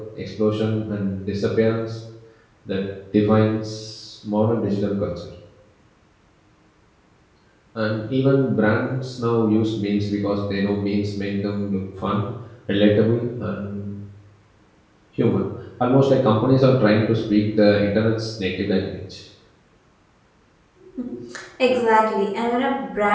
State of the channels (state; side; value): identical; both; correlation 1.00